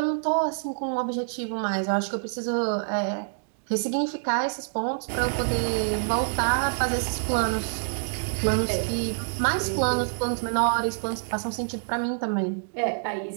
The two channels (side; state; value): left; silent; digital silence